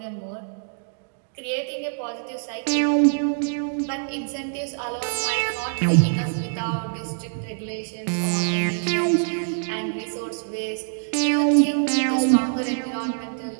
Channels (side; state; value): left; silent; digital silence